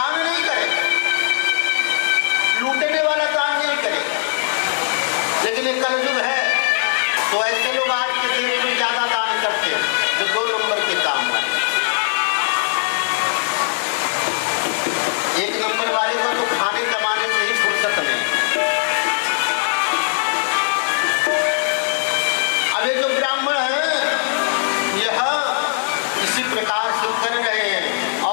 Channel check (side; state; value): right; silent; digital silence